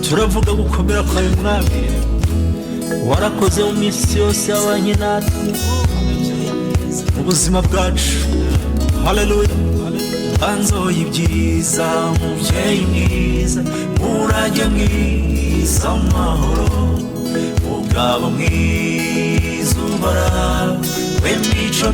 Turavuga gukomera kwawe mwami, warakoze mu minsi yose yabanye natwe mu buzima bwacu. Haleluya. Banzo y'ibyiza, mubyeyi mwiza, murage mwiza, amahoro, mugabo mwiza uhoraho, w'imico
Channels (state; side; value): identical; both; correlation 1.00